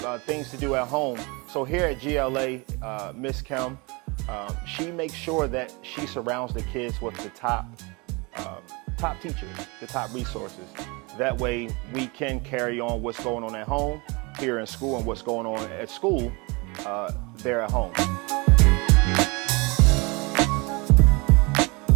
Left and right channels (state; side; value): quieter; left; 27.7 dB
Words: things to do at home. So here at GLA, Miss Kim, she makes sure that she surrounds the kids with the top teachers, the top resources. That way we can carry on what's going on at home, here in school, and what's going on at school there at home.